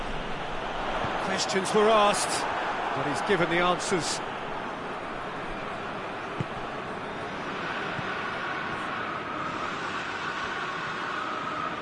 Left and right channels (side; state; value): both; identical; correlation 1.00